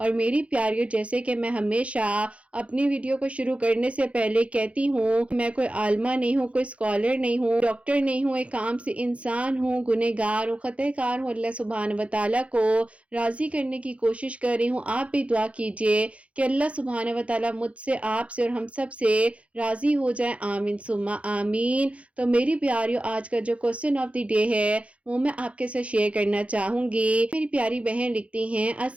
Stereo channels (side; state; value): left; late; 0.063 ms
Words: میری پیاریوں، جیسے کہ میں ہمیشہ اپنی ویڈیو کو شروع کرنے سے پہلے کہتی ہوں، میں کوئی عالمہ نہیں ہوں، کوئی اسکالر نہیں ہوں، ڈاکٹر نہیں ہوں، ایک عام سی انسان ہوں، گنہگار ہوں، خطا کار ہوں۔ اللہ سبحانہ و تعالیٰ کو راضی کرنے کی کوشش کر رہی ہوں۔ آپ بھی دعا کیجئے کہ اللہ سبحانہ و تعالیٰ مجھ سے، آپ سے اور ہم سب سے راضی ہو جائے، آمین ثم آمین۔ تو میری پیاریوں، آج کا جو کوسچن آف دی ڈے ہے وہ میں آپ کے ساتھ شیئر کرنا چاہوں گی۔ میری پیاری بہن لکھتی ہیں،